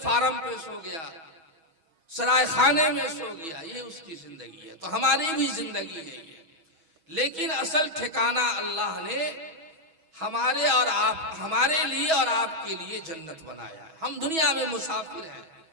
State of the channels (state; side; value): late; left; 6.2 ms